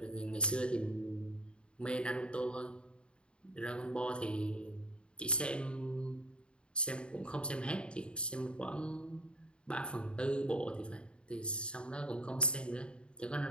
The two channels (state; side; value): late; right; 0.054 ms